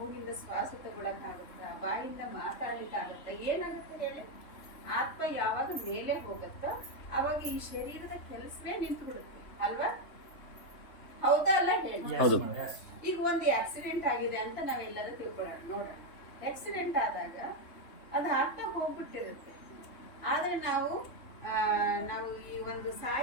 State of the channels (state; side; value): late; right; 3.3 ms